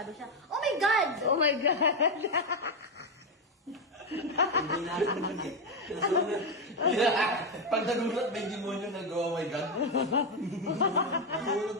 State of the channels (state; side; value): normal; both; correlation 0.07